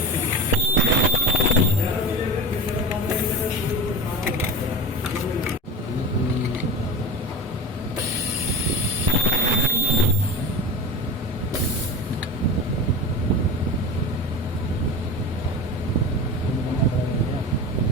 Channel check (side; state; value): both; normal; correlation 0.25